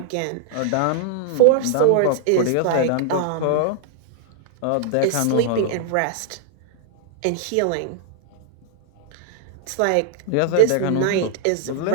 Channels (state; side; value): different; both; correlation -0.01